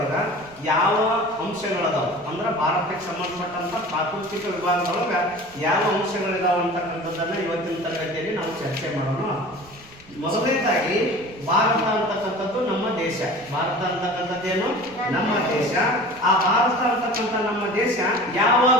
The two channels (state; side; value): noise; right; rumble, 24 dB below the sound